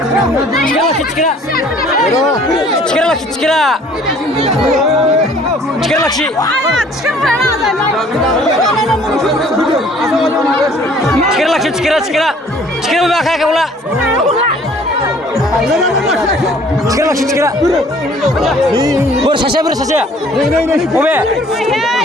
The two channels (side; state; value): both; normal; correlation 0.55